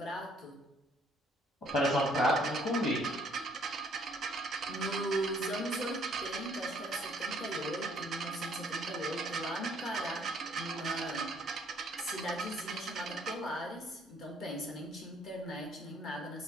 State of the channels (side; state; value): both; normal; correlation 0.63